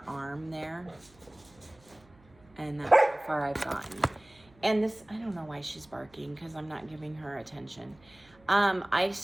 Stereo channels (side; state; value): right; noise; hum, 28 dB below the sound